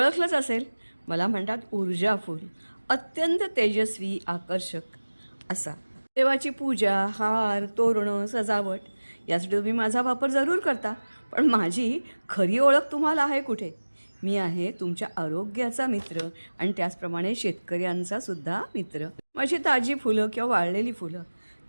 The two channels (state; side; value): inverted; both; correlation -1.00